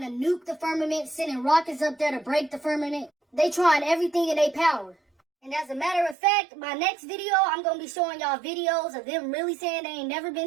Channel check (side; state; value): left; drops out; at 6.2 s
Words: to nuke the firmament, sending rockets up there to break the firmament. They trying everything in their power. And as a matter of fact, my next video, I'm going to be showing y'all videos of them really saying they ain't never